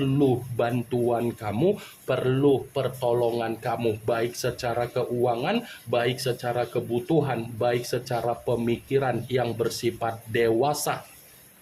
bantuan kamu, perlu pertolongan kamu, baik secara keuangan, baik secara kebutuhan, baik secara pemikiran yang bersifat dewasa.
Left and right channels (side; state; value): both; identical; correlation 1.00